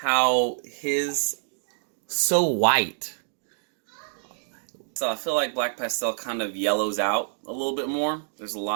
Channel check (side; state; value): left; silent; digital silence